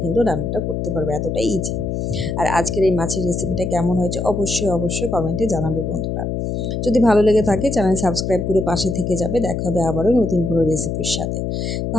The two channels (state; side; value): noise; left; hum, 2 dB below the sound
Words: কিন্তু রান্নাটা করতে পারবে, এতটাই ইজি। আর আজকের এই মাছের রেসিপিটা কেমন হয়েছে অবশ্যই অবশ্যই কমেন্টে জানাবে বন্ধুরা। যদি ভালো লেগে থাকে চ্যানেল সাবস্ক্রাইব করে পাশে থেকে যাবে। দেখা হবে আবারও নতুন কোনো রেসিপির সাথে।